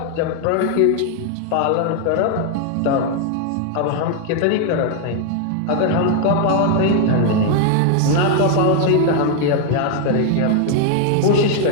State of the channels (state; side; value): different; both; correlation 0.01